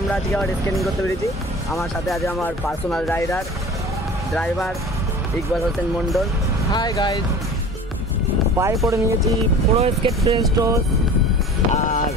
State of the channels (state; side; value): normal; both; correlation 0.41